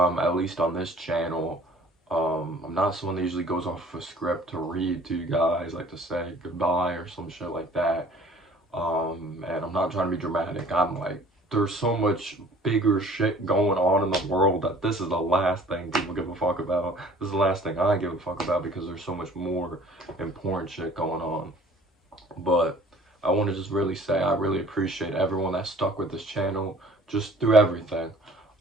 least on this channel. I'm not someone that usually goes off a script to read to you guys, like to say goodbye or some shit like that. And I'm not trying to be dramatic. I'm like, there's so much bigger shit going on in the world that this is the last thing people give a fuck about. This is the last thing I give a fuck about because there's so much more important shit going on. But I want to just really say I really appreciate everyone that stuck with this channel just through everything.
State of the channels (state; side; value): normal; both; correlation 0.51